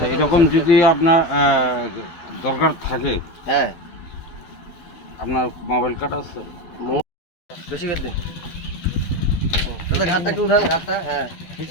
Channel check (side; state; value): right; late; 12 ms